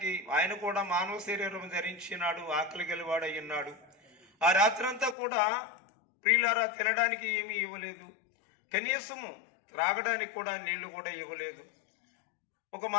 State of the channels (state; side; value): drops out; right; at 5.2 s